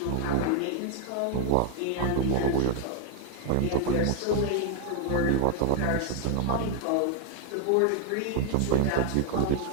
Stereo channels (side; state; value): both; different; correlation 0.00